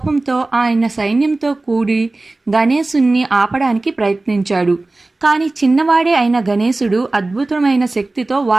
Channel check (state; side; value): quieter; left; 3.1 dB